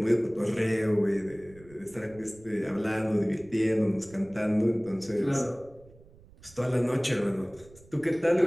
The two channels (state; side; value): noise; right; rumble, 24 dB below the sound